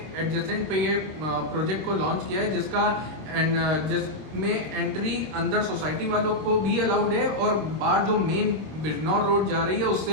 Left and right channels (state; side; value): late; left; 26 ms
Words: एडजेसेंट पे ये प्रोजेक्ट को लॉन्च किया है जिसमें एंट्री अंदर सोसाइटी वालों को भी अलाउड है और बाहर जो मेन बिजनौर रोड जा रही है